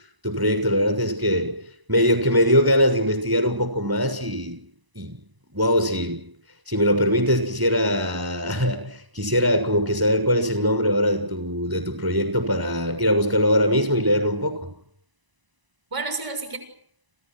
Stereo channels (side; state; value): left; late; 1.0 ms